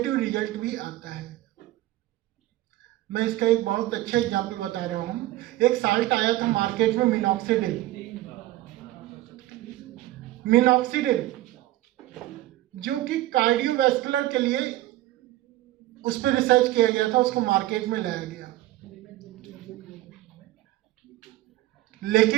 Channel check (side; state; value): left; quieter; 16.2 dB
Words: रिजल्ट भी आता है। मैं इसका एक बहुत अच्छा एग्जांपल बता रहा हूं। एक साल्ट आया था मार्केट में, मिनॉक्सिडिल, जो कि कार्डियोवैस्कुलर के लिए उस पर रिसर्च किया गया था, उसको मार्केट में लाया गया।